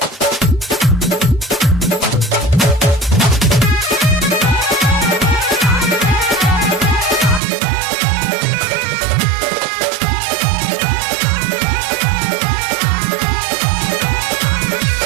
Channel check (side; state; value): left; drops out; at 7.4 s